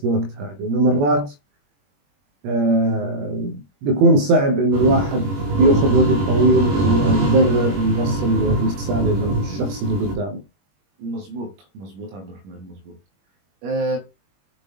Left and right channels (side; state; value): left; late; 21 ms